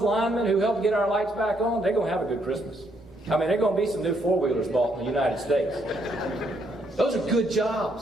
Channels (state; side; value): normal; both; correlation 0.73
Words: linemen who helped get our lights back on, they're going to have a good Christmas. I mean, they're going to be some new four-wheelers bought in the United States. Those are good